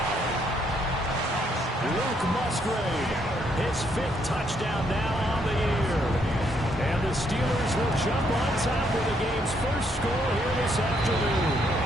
Luke Musgrave, his 5th touchdown now on the year. And the Steelers will jump on top with the game's first score here this afternoon.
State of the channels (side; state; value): both; normal; correlation 0.72